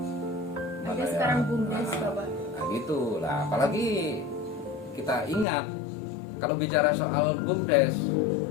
ada sekarang BUMDes Bapak. nah gitu lah. Apalagi kita ingat kalau bicara soal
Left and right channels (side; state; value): right; drops out; at 5.5 s